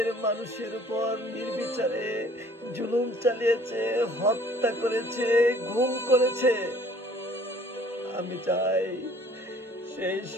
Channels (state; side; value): normal; both; correlation 0.55